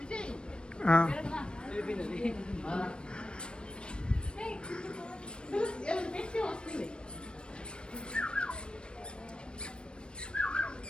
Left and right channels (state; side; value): late; right; 0.055 ms